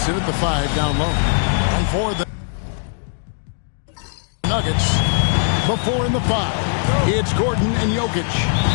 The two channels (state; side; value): silent; right; digital silence